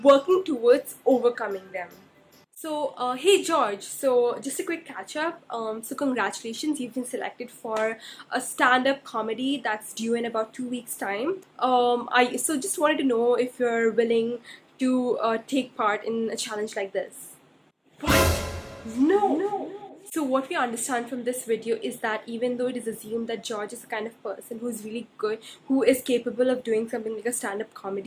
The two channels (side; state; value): both; identical; correlation 1.00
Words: working towards overcoming them. So, hey George, so just a quick catch up. So congratulations, you've been selected for a stand-up comedy that's due in about 2 weeks' time. I just wanted to know if you're willing to take part in a challenge like this. What? No. So what we understand from this video is that even though it is assumed that George is the kind of person who is really good, who is capable of doing something like a stand-up